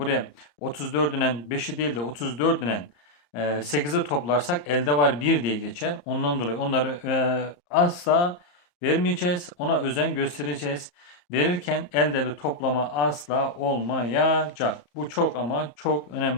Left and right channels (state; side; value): late; right; 34 ms